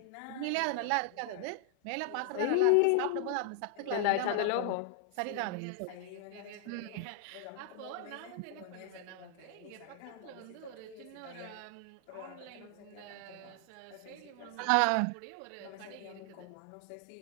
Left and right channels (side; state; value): both; different; correlation 0.00